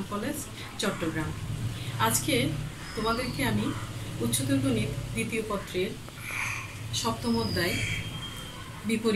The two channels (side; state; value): both; identical; correlation 1.00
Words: কলেজ, চট্টগ্রাম। আজকে তোমাদেরকে আমি উচ্চতর গণিত দ্বিতীয় পত্রের সপ্তম অধ্যায়